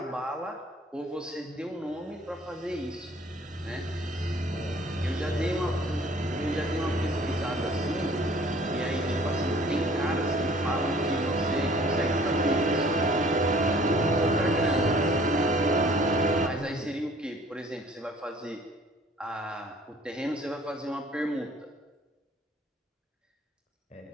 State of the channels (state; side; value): normal; both; correlation 0.54